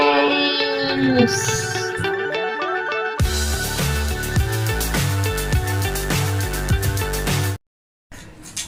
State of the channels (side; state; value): both; identical; correlation 1.00